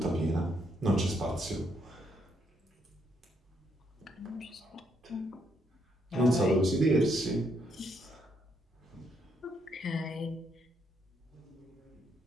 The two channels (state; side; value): normal; both; correlation 0.75